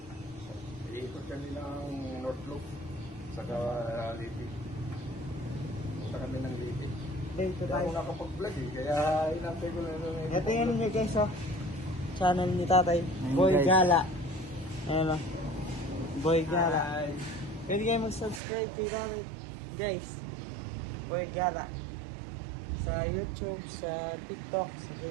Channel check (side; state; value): left; drops out; at 18.4 s